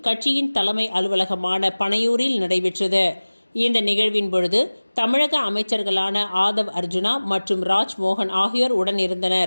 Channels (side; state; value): both; inverted; correlation -1.00